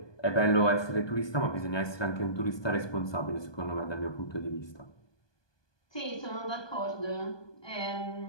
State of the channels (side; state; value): right; late; 1.2 ms